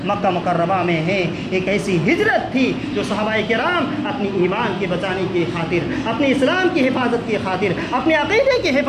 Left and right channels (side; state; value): both; identical; correlation 1.00